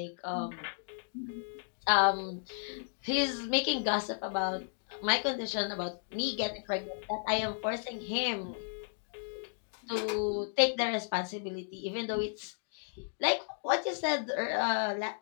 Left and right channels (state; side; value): silent; right; digital silence